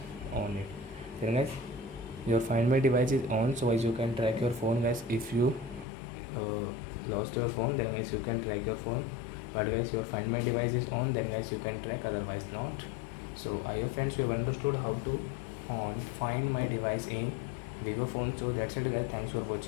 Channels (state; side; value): drops out; right; at 5.9 s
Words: on it. Then guys your find my device is on, so guys you can track your phone. Guys, if you lost your phone, then guys you can track your phone, but guys your find my device is on, then guys you can track, otherwise not. So I hope friends you have understood how to on find my device in vivo phone. So that's it guys, thanks for